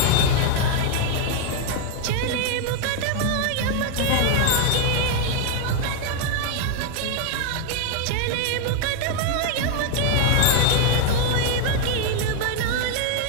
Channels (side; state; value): both; different; correlation 0.00